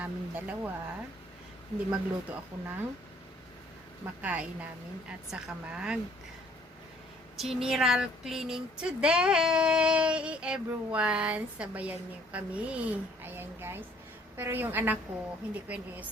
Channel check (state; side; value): normal; both; correlation 0.60